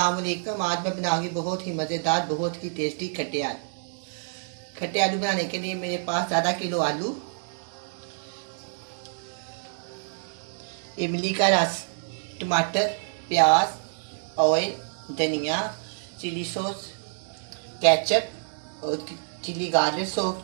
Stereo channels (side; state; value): left; silent; digital silence